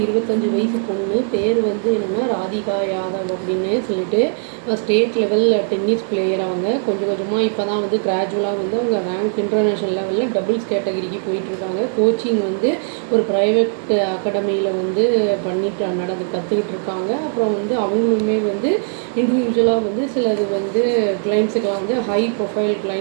25 வயசு பொண்ணு. பேர் வந்து என்னென்னா ராதிகா யாதவ் அப்படின்னு சொல்லிட்டு ஸ்டேட் லெவல் டென்னிஸ் பிளேயர். அவங்க கொஞ்சம் கொஞ்சமாக இப்போ தான் வந்து கிராஜுவலாக வந்து அவங்க ரேங்க் இன்டர்நேஷ்னல் லெவலில் டபுள்ஸ் கேட்டகரிக்கு போயிட்டுருக்காங்க. கோச்சிங் வந்து ஒரு ப்ரைவேட் அகாடமியில் வந்து கற்றுக்கிட்டு இருக்காங்க. அப்புறம் வந்து அவங்களுமே வந்து இண்டிவிஜுவலாக வந்து சிலது வந்து கிளைண்ட்ஸுக்கெலாம் வந்து ஹை ப்ரொஃபைல்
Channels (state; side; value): silent; left; digital silence